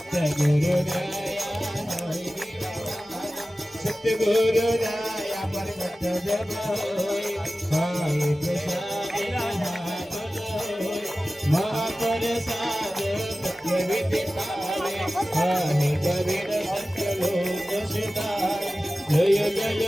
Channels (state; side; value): normal; both; correlation 0.96